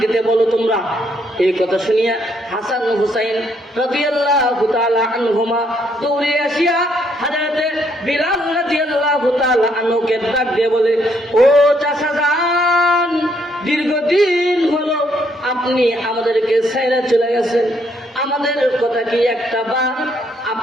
দিতে বলো তোমরা। এই কথা শুনিয়া হাসান হুসাইন রাদিয়াল্লাহু তাআলা আনহুমা দৌড়ে আসিয়া হযরতে বিলাল রাদিয়াল্লাহু তাআলা আনহুকে ডাক দিয়ে বলে, ও চাচা যান, দীর্ঘদিন হলো আপনি আমাদেরকে ছেড়ে চলে গেছেন, আমাদের কথা কি একটা বার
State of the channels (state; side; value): normal; both; correlation 0.71